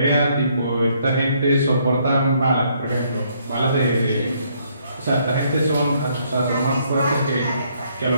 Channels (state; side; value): inverted; both; correlation -0.69